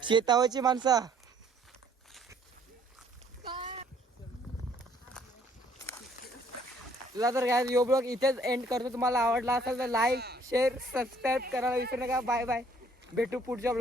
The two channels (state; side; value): normal; both; correlation 0.61